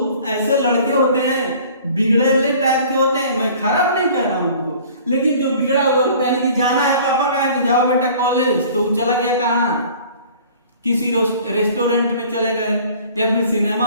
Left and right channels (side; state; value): both; inverted; correlation -0.49